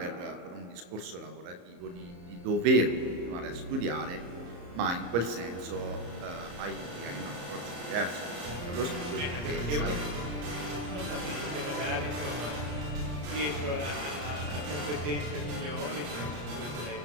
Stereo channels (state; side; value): late; left; 34 ms